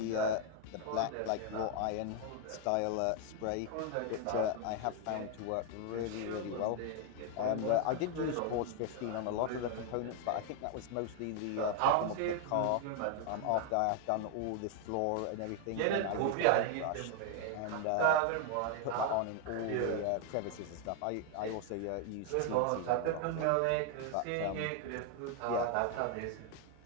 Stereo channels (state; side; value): different; both; correlation 0.00